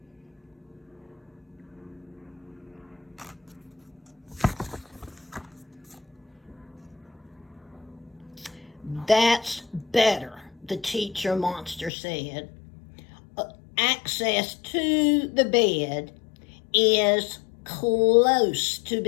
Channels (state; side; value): drops out; right; at 11.9 s